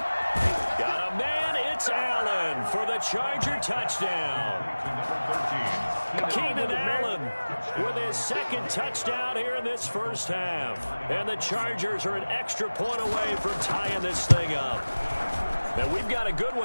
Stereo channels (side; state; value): both; inverted; correlation -1.00